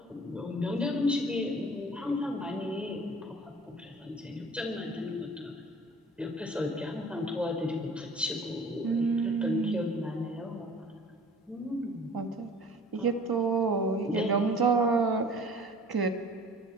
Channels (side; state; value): both; normal; correlation 0.48